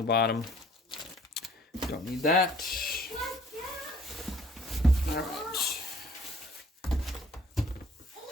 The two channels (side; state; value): both; normal; correlation 0.56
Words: bottom. Don't need that. All right.